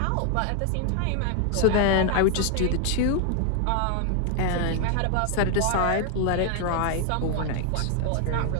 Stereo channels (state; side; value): different; both; correlation 0.00